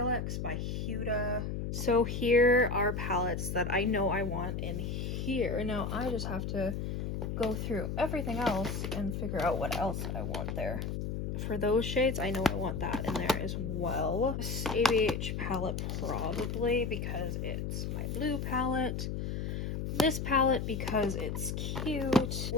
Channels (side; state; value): left; noise; hum, 3 dB below the sound